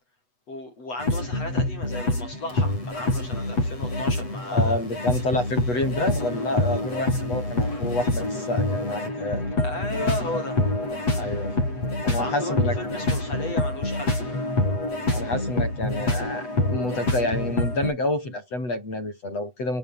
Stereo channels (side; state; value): right; late; 8.1 ms